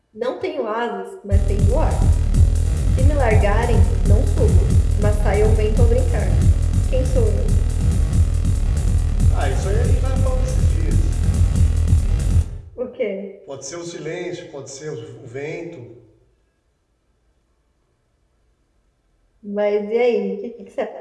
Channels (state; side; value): identical; both; correlation 1.00